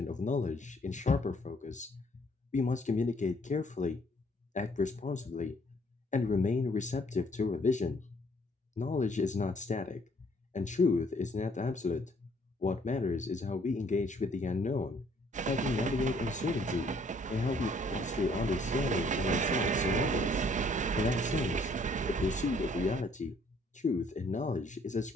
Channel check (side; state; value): both; normal; correlation 0.62